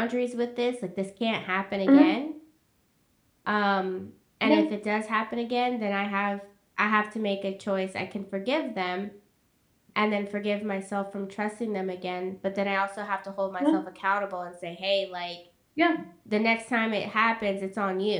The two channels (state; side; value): identical; both; correlation 1.00